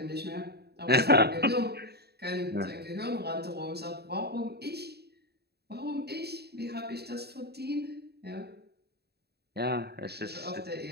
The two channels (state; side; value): late; left; 0.47 ms